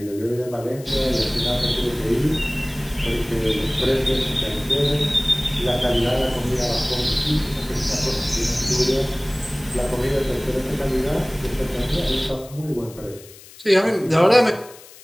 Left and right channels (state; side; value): noise; left; hiss, 20 dB below the sound